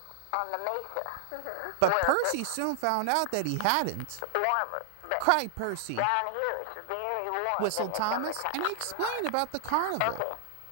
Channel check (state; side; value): different; both; correlation 0.00